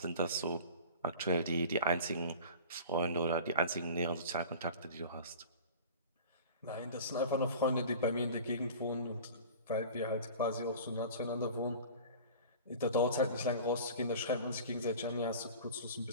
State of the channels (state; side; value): inverted; both; correlation -0.39